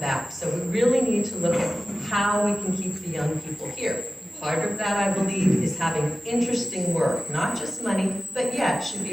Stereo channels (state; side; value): normal; both; correlation 0.96